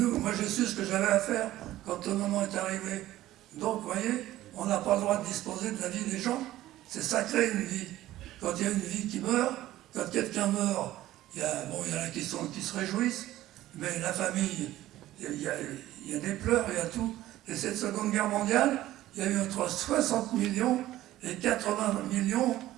j'ai su ce que j'avais à faire quand le moment est arrivé. Donc, vous voyez, on n'a pas le droit de disposer de la vie des gens. C'est sacré une vie. Quand il y a une vie qui meurt, quand quelqu'un meurt, il y en a qui se réjouissent, mais la famille, il y a des pleurs, il y a tout. Et cette Seconde Guerre mondiale, il y a eu entre 60 millions et 80 millions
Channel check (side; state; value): left; quieter; 14.9 dB